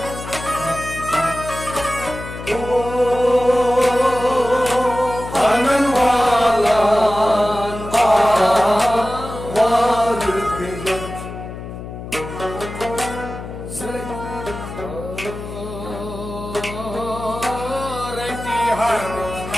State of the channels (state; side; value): noise; left; hum, 10 dB below the sound